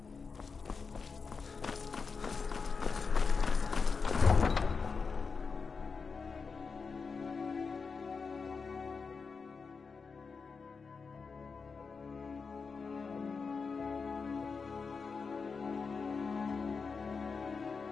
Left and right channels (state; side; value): quieter; right; 5.0 dB